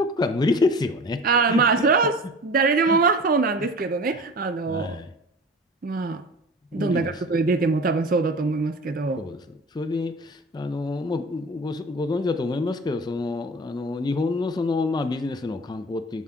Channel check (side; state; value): both; normal; correlation 0.39